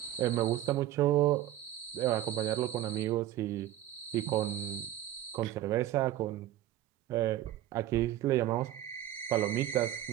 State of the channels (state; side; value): quieter; left; 13.3 dB